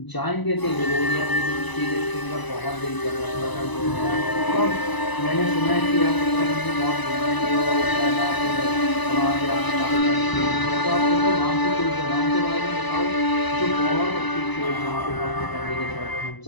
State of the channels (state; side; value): late; right; 1.0 ms